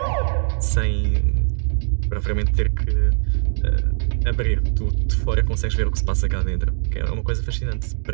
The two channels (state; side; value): silent; left; digital silence